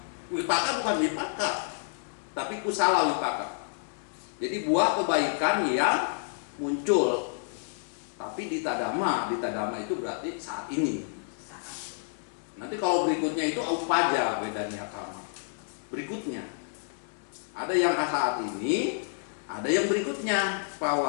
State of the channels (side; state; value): right; silent; digital silence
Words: wipaka bukan wipaka, tapi kusala wipaka. Jadi buah kebaikan yang muncul. Tapi Dita Dhamma itu berarti saat ini. Nanti kalau berikutnya itu upaja Wedaniya Kama. Berikutnya ada yang saat ini, ada yang berikutnya